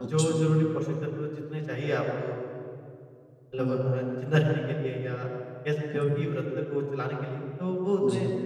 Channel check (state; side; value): identical; both; correlation 1.00